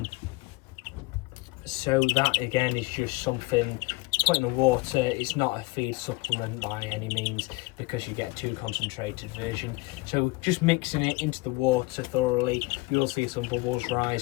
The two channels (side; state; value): right; quieter; 23.5 dB